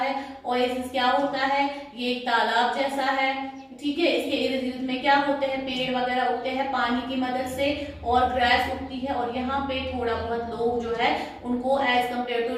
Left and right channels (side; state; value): both; identical; correlation 1.00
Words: ओएसिस क्या होता है, ये एक तालाब जैसा है, ठीक है। इसके इर्द गिर्द में क्या होते हैं, पेड़ वगैरह उगते हैं पानी की मदद से, और ग्रास उगती है, और यहाँ पे थोड़ा बहुत लोग जो है उनको एज कम्पेयर टू